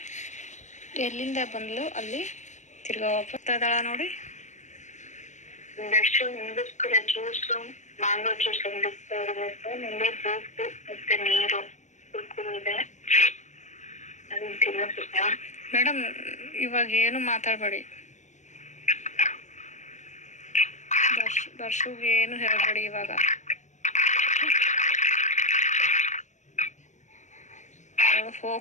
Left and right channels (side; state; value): right; late; 0.34 ms